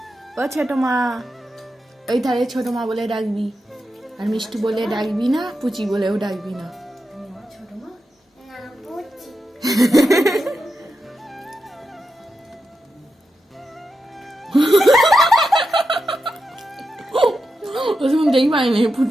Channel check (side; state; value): both; normal; correlation 0.88